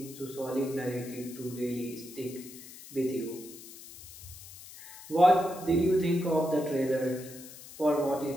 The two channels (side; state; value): left; noise; hiss, 16 dB below the sound